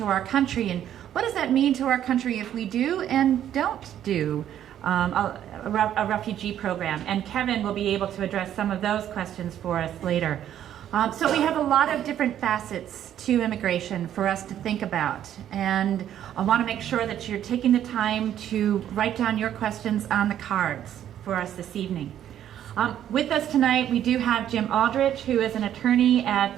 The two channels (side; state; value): left; quieter; 10.8 dB